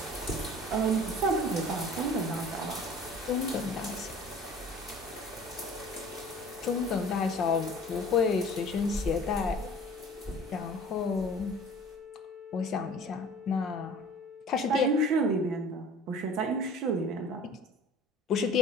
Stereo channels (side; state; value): both; normal; correlation 0.45